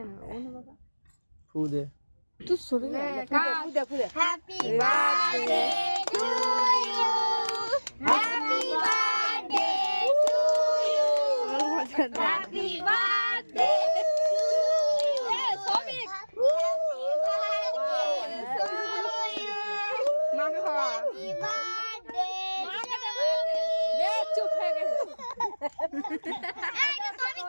ও না বাবা ফু দে তুই সরে যা ফুদে happy birthday to you happy birthday to you happy birthday to you সবিক মাকে খাওয়া হ্যাপি বার্থডে মাকে দে বে চুপ হয়ে গেছে এই তো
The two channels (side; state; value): both; inverted; correlation -1.00